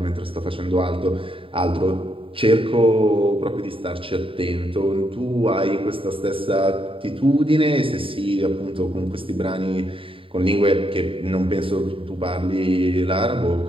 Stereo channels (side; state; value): left; late; 0.26 ms